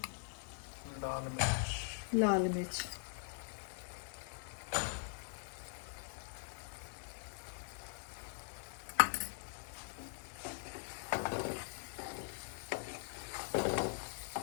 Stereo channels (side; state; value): right; silent; digital silence